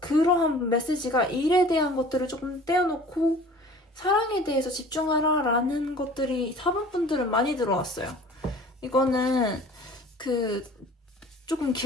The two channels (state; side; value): normal; both; correlation 0.46